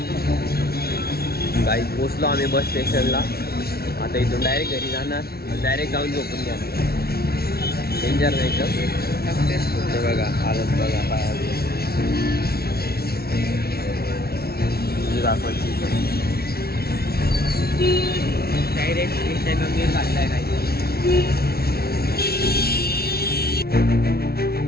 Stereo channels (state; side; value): late; right; 0.45 ms